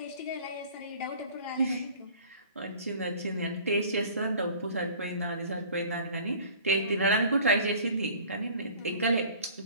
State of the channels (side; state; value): both; inverted; correlation -0.48